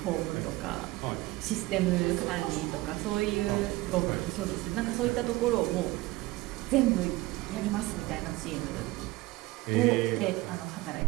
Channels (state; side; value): quieter; left; 19.6 dB